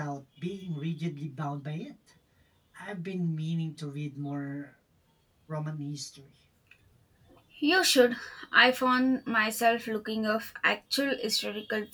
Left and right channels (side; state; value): both; identical; correlation 1.00